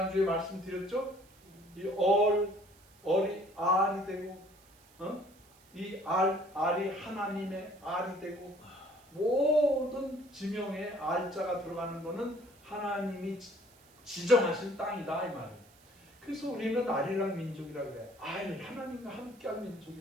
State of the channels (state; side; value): noise; right; hiss, 28 dB below the sound